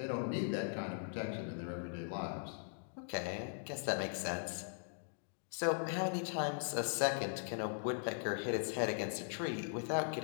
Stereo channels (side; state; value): right; silent; digital silence